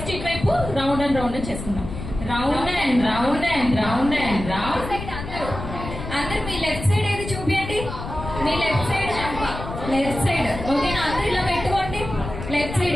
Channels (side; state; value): left; noise; rumble, 8 dB below the sound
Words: రౌండ్ అండ్ రౌండ్ చేసుకుందాం. Round and round and round and round. అందరు మీ లెఫ్ట్ సైడ్ ఏది చూపించండి. మీ లెఫ్ట్ సైడ్ లెఫ్ట్ సైడ్. ఓకేనా? అందరు ఇలా పెట్టుకోండి లెఫ్ట్